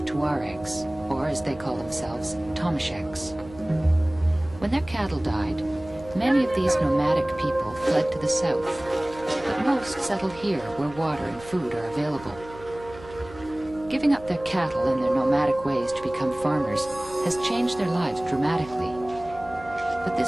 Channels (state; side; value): noise; right; hum, 18 dB below the sound